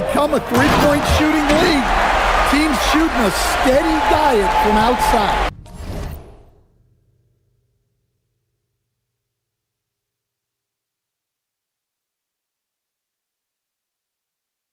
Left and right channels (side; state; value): both; identical; correlation 1.00